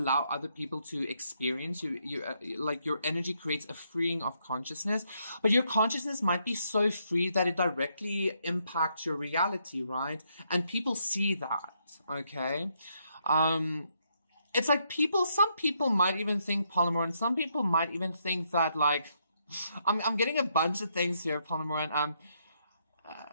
other people to experience. Like, your energy creates a freeing of consciousness, but your consciousness might be so free that it directly impacts your reality, right? And people see that, okay? It's like some people might even think, Polymer, and some people might even think that, like, I'm getting a bunch of things here, Polymer, and,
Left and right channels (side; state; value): both; inverted; correlation -0.76